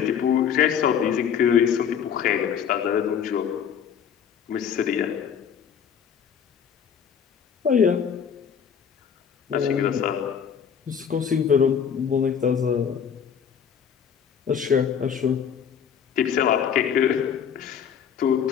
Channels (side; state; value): right; quieter; 7.7 dB